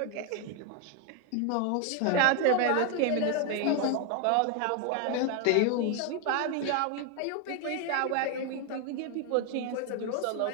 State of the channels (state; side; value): different; both; correlation 0.01